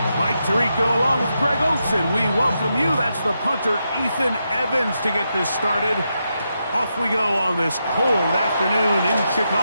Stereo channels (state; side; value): inverted; both; correlation -0.85